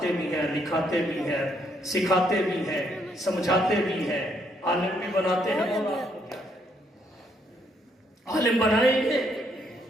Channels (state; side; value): normal; both; correlation 0.72